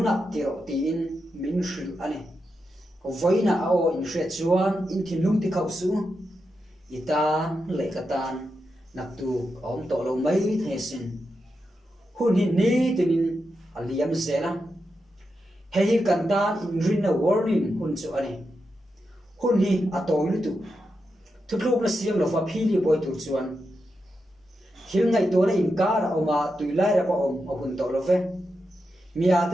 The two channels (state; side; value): normal; both; correlation 0.87